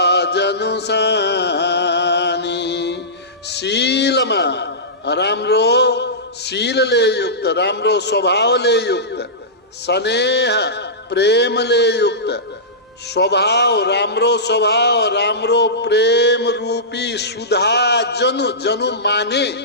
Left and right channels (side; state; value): both; normal; correlation -0.18